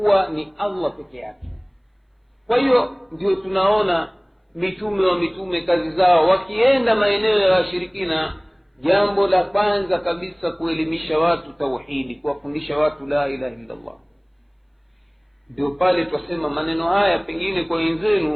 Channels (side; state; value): both; identical; correlation 1.00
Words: ni Allah peke yake. Kwa hiyo ndio tunaona mitume wa mitume kazi zao wakienda maeneo ya washirikina, jambo la kwanza kabisa kuelimisha watu tauhidi, kuwafundisha watu la ilaha illa Allah. Ndio pale twasema maneno haya pengine kwa